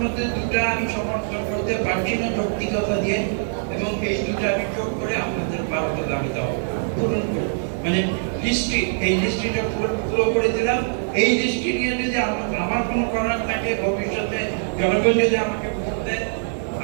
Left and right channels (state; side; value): silent; left; digital silence